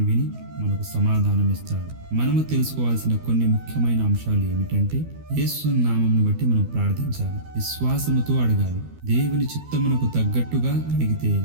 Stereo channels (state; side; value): late; left; 12 ms